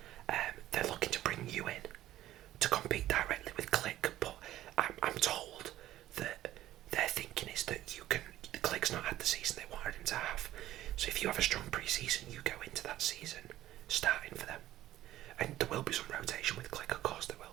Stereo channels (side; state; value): left; quieter; 14.1 dB